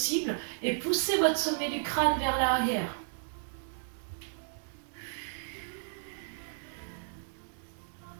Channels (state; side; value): silent; left; digital silence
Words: et pousser votre sommet du crâne vers l'arrière.